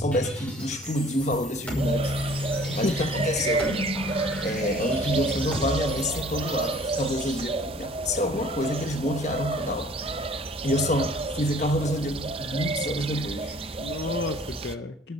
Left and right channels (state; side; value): normal; both; correlation 0.52